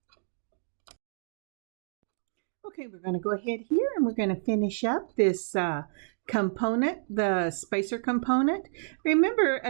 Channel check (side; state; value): left; silent; digital silence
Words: Okay, we're going to go ahead here and we're going to finish up this component, the spacer component. Remember,